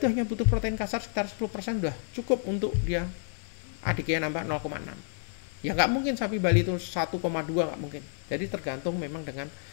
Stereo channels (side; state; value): right; silent; 58 dB below the other